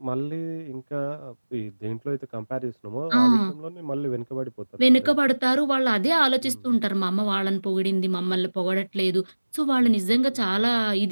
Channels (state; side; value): inverted; both; correlation -1.00